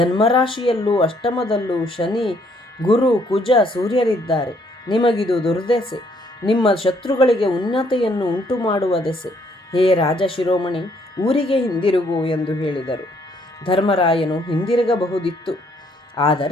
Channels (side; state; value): both; normal; correlation 0.67